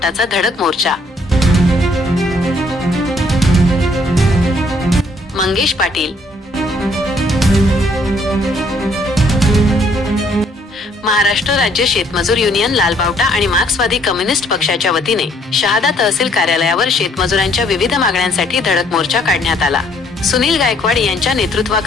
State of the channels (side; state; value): both; normal; correlation 0.65